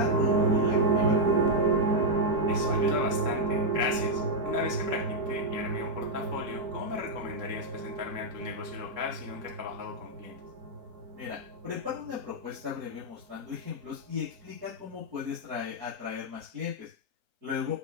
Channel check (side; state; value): left; late; 3.7 ms